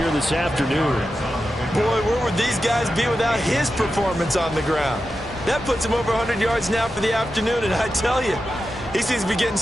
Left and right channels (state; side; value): normal; both; correlation 0.90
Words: this afternoon. Boy, where would these guys be without his performance on the ground? That puts him over 100 yards now for the afternoon, and I tell you, he seems to be getting